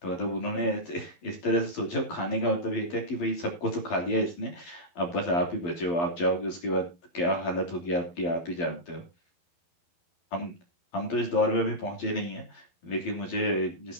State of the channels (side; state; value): right; late; 12 ms